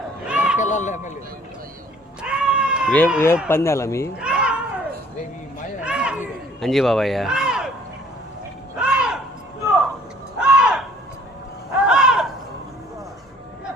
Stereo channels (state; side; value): normal; both; correlation 0.56